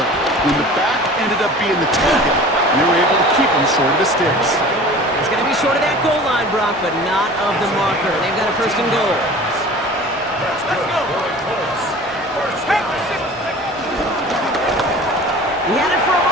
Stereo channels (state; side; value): normal; both; correlation 0.41